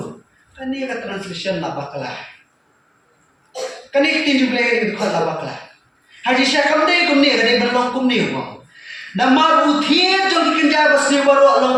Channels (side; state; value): both; identical; correlation 1.00